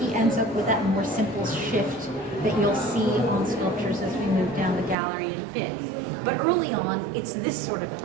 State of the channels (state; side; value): drops out; left; at 5.0 s